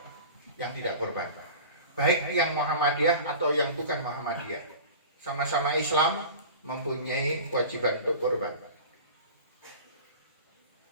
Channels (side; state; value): both; inverted; correlation -0.36